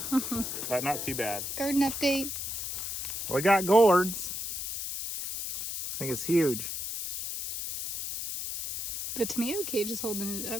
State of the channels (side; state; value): left; noise; hiss, 5 dB below the sound